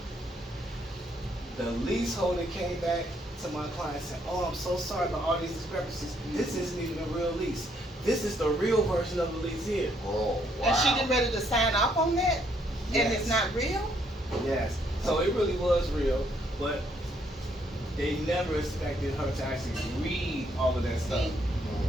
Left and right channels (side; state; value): both; normal; correlation 0.71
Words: The leaseholder came back to my client and said, oh, I'm so sorry about all these discrepancies. This isn't even a real lease. This is the real version of the lease here. Oh, wow. And she getting ready to sign off on that? And Yes. it's not real? Yes. So it really was real, but they never expected her to actually read all of that stuff.